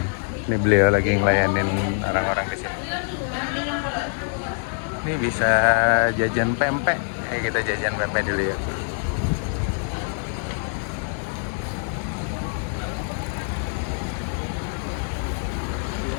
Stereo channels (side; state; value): right; silent; 62 dB below the other